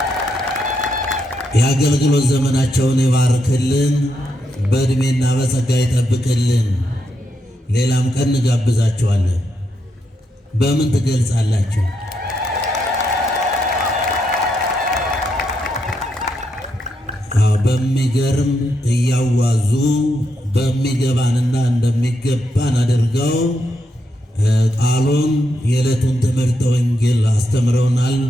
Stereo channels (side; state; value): both; normal; correlation 0.81